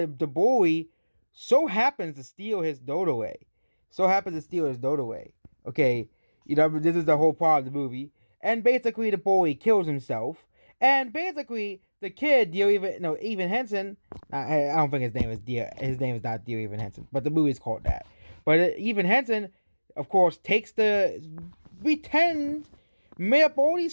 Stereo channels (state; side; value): inverted; both; correlation -1.00